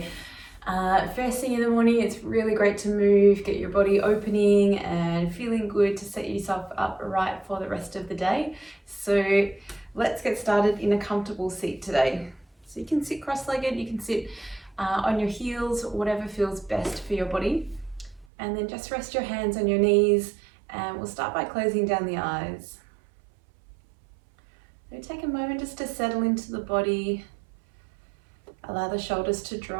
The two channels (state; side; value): drops out; left; at 18.2 s